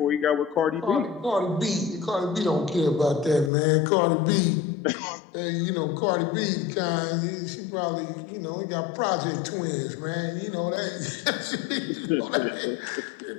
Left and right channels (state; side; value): drops out; right; at 3.5 s